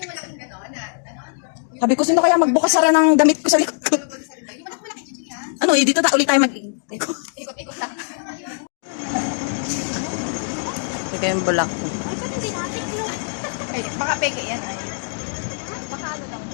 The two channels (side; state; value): right; silent; digital silence